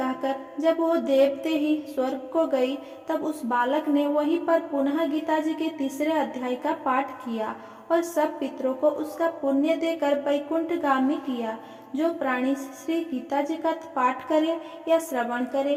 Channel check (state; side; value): identical; both; correlation 1.00